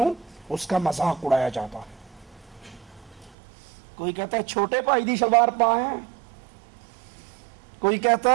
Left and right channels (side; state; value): left; drops out; at 3.4 s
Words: اس کا مذاق اڑایا جاتا ہے۔ کوئی کہتا ہے چھوٹے پائی دی شلوار پائیں، کوئی کہتا